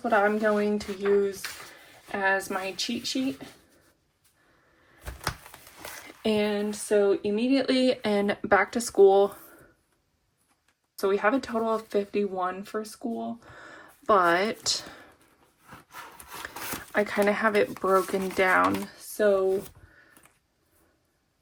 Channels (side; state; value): both; identical; correlation 1.00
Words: what I'm going to use as my cheat sheet. And so immediately and back to school. So we have a total of 51 for school, but I kind of have it broken down. So